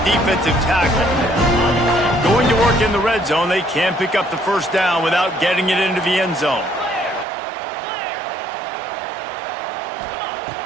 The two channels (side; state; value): left; drops out; at 7.2 s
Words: defensive tackle. Going to work in the red zone, they can't pick up the first down without getting it into the end zone.